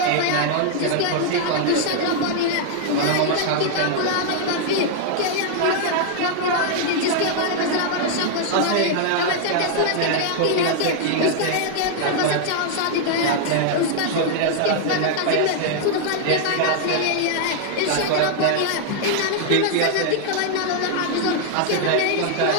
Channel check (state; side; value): different; both; correlation 0.00